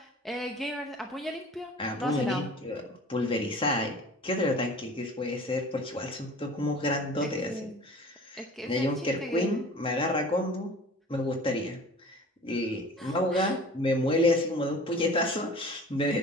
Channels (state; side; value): normal; both; correlation 0.43